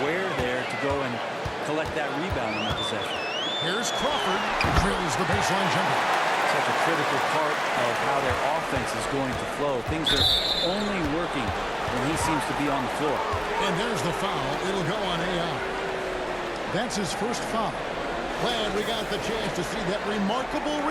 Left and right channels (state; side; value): identical; both; correlation 1.00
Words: aware there to go and collect that rebound in the possession. Here's Crawford. Drills the baseline jumper. Such a critical part of how their offense is going to flow. Things are only working when he seems to be on the floor. And there's the foul. It'll go on AI. That's his first foul. Glad we got the chance to see that remarkable